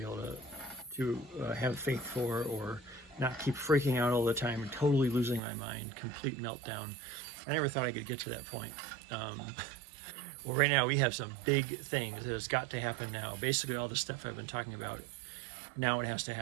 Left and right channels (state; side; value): drops out; left; at 5.4 s